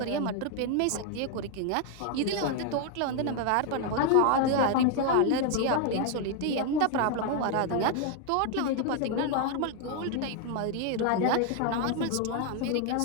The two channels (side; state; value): both; different; correlation 0.01